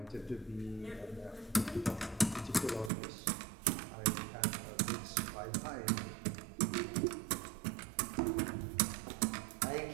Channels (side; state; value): left; drops out; at 2.9 s